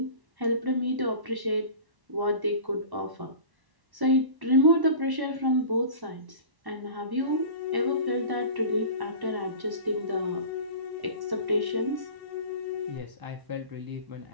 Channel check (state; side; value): late; left; 1.1 ms